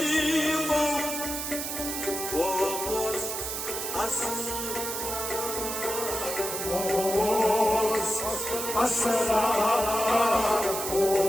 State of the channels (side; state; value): right; noise; hiss, 4 dB below the sound